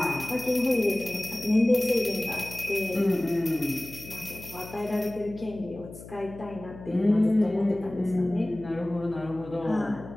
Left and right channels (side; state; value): left; noise; hum, 15 dB below the sound